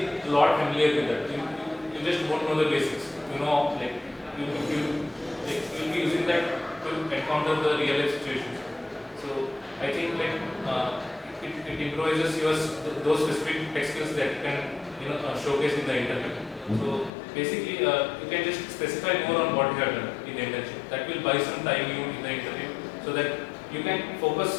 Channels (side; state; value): right; drops out; at 17.1 s